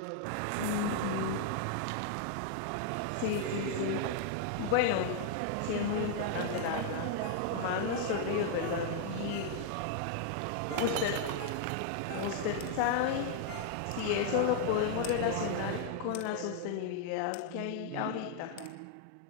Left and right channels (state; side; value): different; both; correlation 0.00